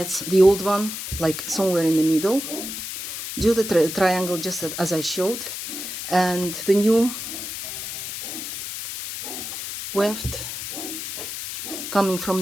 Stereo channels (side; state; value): left; noise; hiss, 7 dB below the sound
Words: the old one like somewhere in the middle, do the triangle just as I showed, and the new weft coming from